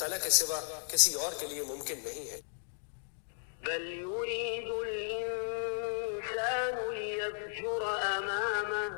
کے سوا کسی اور کے لیے ممکن نہیں ہے۔ بل یرید الانسان لیفجر امامہ،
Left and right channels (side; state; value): right; silent; digital silence